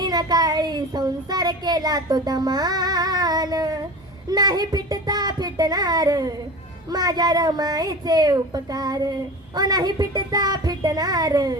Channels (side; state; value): both; normal; correlation 0.33